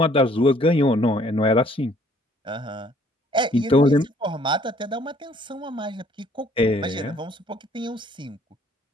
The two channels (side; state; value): both; normal; correlation 0.60